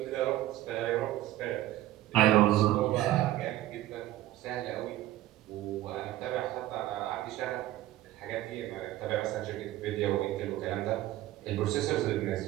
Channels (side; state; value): left; quieter; 15.0 dB